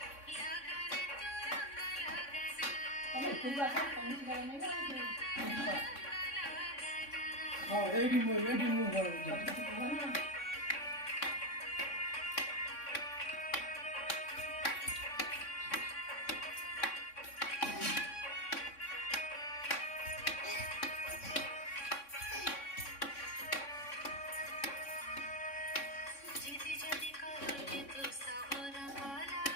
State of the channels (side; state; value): right; late; 3.6 ms